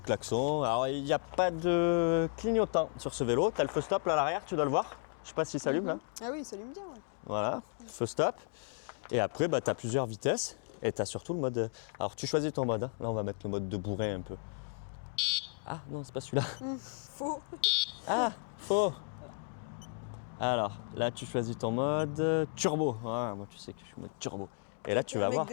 alors il n'y a pas de clignotant sur ce vélo. Tu as le feu stop là à l'arrière, tu dois le voir. Je sais pas si ça s'allume là. Ah oui, il s'allume bien, ouais. Voilà, feu stop. Et après, tu as plusieurs vitesses. Et tu as surtout le mode. Alors, tu choisis ton mode. Hein. Là, on va mettre le mode de bourrin un peu. Ah non, c'est pas celui-là. Faux. Ah, faux. Alors, là, tu choisis ton mode turbo. Ah, moi, tu sais que je suis mode turbo. Et là, tu vas un mec voir.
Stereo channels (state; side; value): silent; right; 55 dB below the other